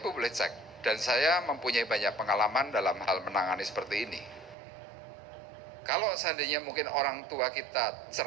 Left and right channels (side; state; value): left; drops out; at 4.5 s